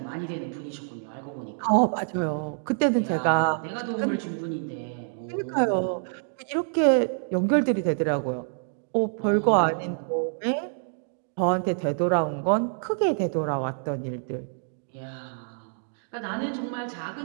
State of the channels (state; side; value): silent; left; digital silence